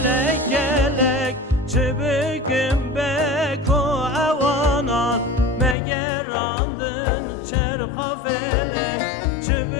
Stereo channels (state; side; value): drops out; right; at 5.8 s